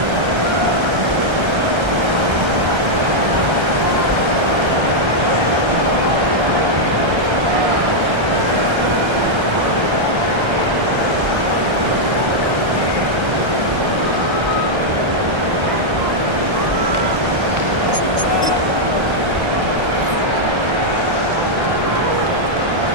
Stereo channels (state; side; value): late; left; 1.3 ms